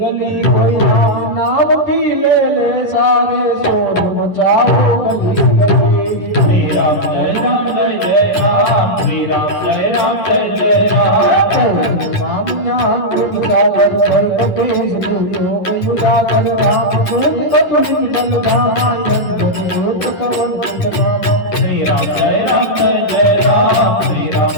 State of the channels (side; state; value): right; late; 10 ms